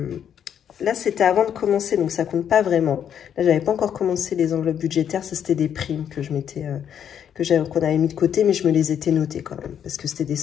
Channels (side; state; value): right; quieter; 8.9 dB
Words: Là, c'était avant de commencer, donc ça compte pas vraiment. Là, j'avais pas encore commencé les enveloppes budgétaires. Ça, c'était des primes que qu'on avait mis de côté, mais je me les étais notées quand même, parce que c'était des